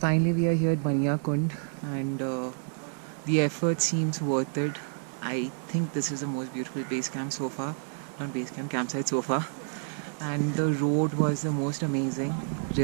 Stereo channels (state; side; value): silent; left; 59 dB below the other